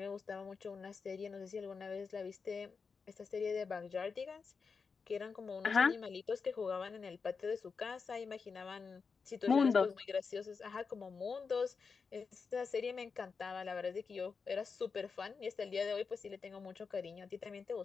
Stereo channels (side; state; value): right; quieter; 5.2 dB